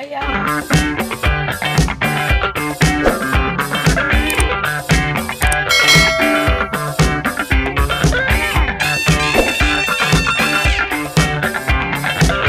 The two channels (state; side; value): identical; both; correlation 1.00